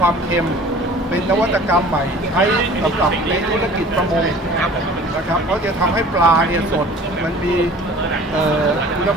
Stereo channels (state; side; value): normal; both; correlation 0.46